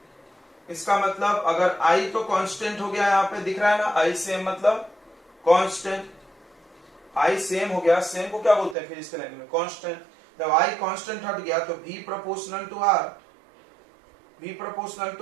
इसका मतलब अगर I तो कांस्टेंट हो गया, यहाँ पे दिख रहा है ना I सेम मतलब कांस्टेंट, I सेम हो गया, सेम को क्या बोलते हैं फिजिक्स लैंग्वेज में? कांस्टेंट। जब I कांस्टेंट हट गया तो V proportional to R, V proportional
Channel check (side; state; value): left; drops out; at 8.8 s